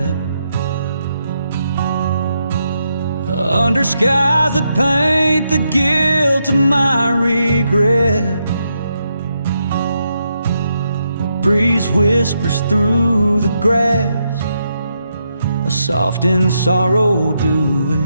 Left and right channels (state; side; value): inverted; both; correlation -0.81